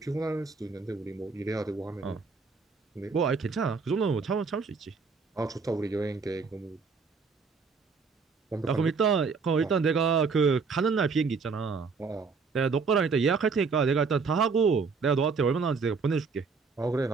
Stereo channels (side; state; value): left; quieter; 4.9 dB